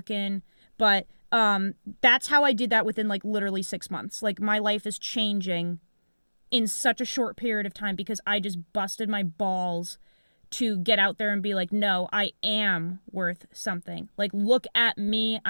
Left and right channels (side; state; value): both; inverted; correlation -1.00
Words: in. But that's how I did that within like literally 6 months. Like my life is changing in such a short period of time because I just busted my balls to get out there and be like, no, I am worth something. Like, look at me.